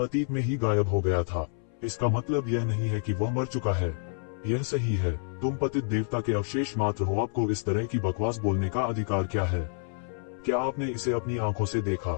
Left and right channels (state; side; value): silent; right; 59 dB below the other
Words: अतीत में ही गायब हो गया था। इसका मतलब यह नहीं है कि वह मर चुका है। यह सही है। तुम पतित देवता के अवशेष मात्र हो। आपको इस तरह की बकवास बोलने का अधिकार क्या है? क्या आपने इसे अपनी आंखों से